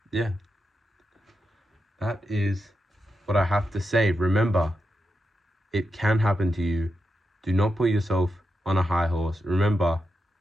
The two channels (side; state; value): both; normal; correlation 0.87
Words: yeah, that is what I have to say. Remember, it can happen to you. Do not put yourself on a high horse. Remember,